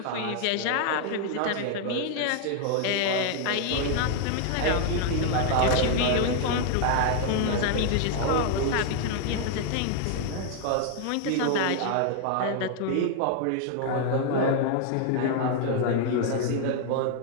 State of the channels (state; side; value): different; both; correlation 0.00